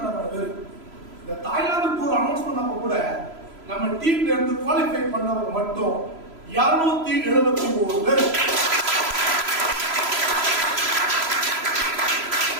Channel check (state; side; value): late; left; 3.0 ms